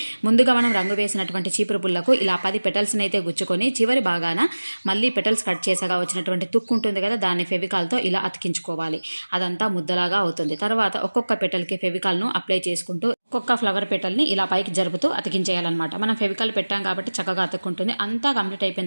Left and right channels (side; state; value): both; inverted; correlation -1.00